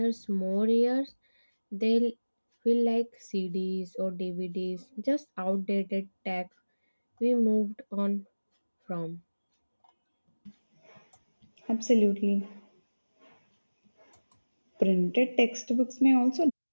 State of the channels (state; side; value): inverted; both; correlation -1.00